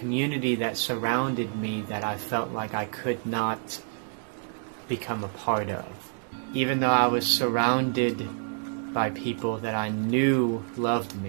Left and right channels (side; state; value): left; silent; 59 dB below the other